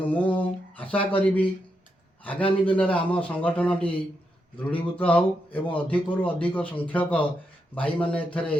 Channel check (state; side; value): normal; both; correlation 0.83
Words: मु आशा करी आगामी दिन में आम संगठनटी दृढ़ीभूत हो एवं अधिक अधिक संख्यक भाई मैंने